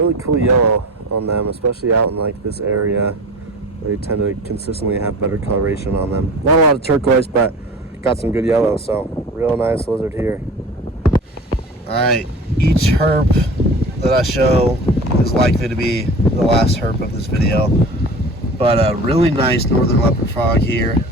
cool yellow on them, especially out in like this area. They tend to consistently have better coloration on them. Not a lot of turquoise, but got some good yellow. So real nice lizard here. All right, each herp that I show is likely to be the last herp of this video. But a really nice northern leopard frog here.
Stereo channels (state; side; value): normal; both; correlation 0.37